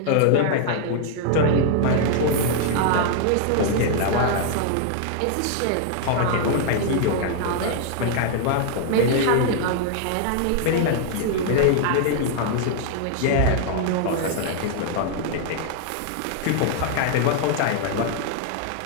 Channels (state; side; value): different; both; correlation 0.00